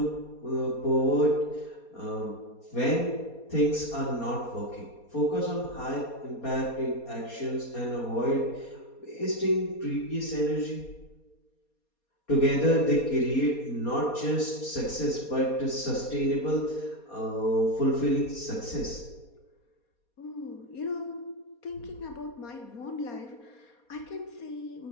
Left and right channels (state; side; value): late; right; 4.2 ms